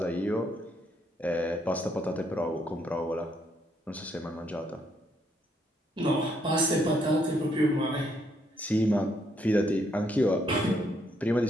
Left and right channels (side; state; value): both; normal; correlation 0.73